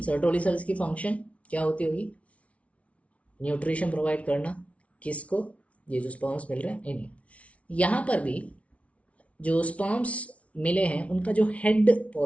सर्टोली सेल्स की फंक्शन क्या होती होगी? न्यूट्रिशन प्रोवाइड करना। किसको? ये जो स्पर्म्स मिल रहे हैं इन्हें। यहाँ पर भी जो स्पर्म्स मिले हैं उनका जो हेड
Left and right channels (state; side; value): late; right; 0.064 ms